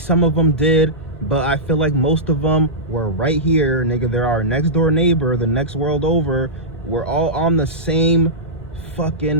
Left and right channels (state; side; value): normal; both; correlation -0.14